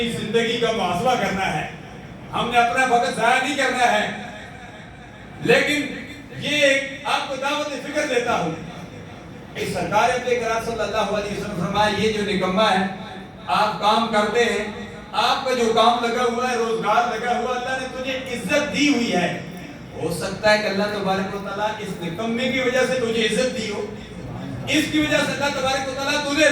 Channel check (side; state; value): both; identical; correlation 1.00